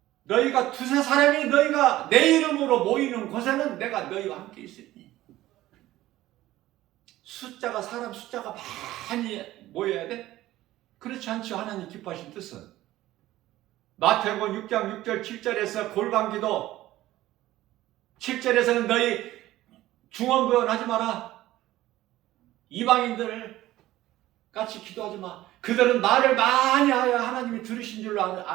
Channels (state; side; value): quieter; left; 15.6 dB